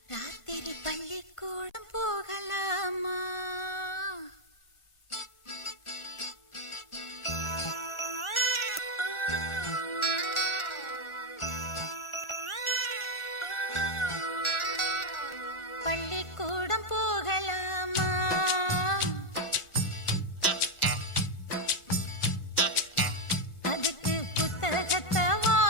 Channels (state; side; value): late; right; 1.4 ms